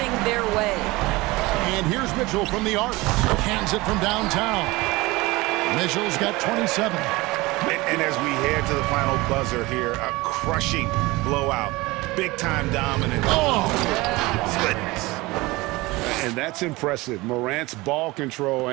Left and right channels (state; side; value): quieter; left; 21.6 dB